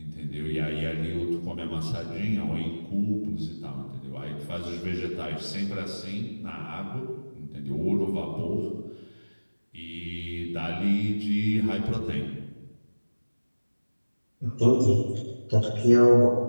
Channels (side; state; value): both; inverted; correlation -1.00